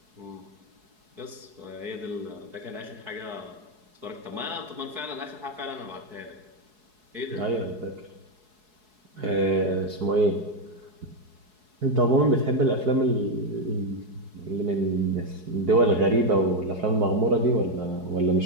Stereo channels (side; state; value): left; late; 4.7 ms